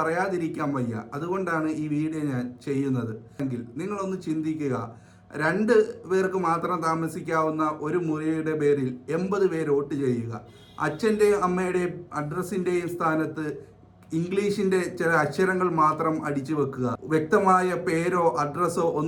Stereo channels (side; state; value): both; identical; correlation 1.00